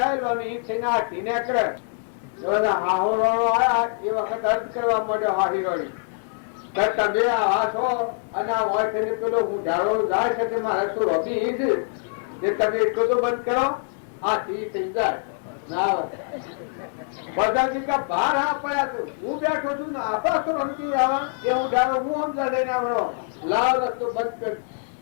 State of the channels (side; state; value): right; silent; 62 dB below the other